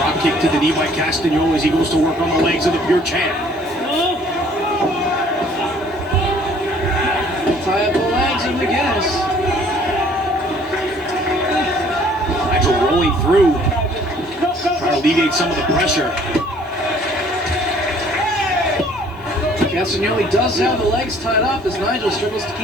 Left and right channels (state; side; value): normal; both; correlation 0.57